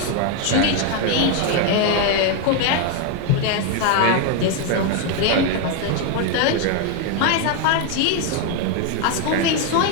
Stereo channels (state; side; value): different; both; correlation 0.01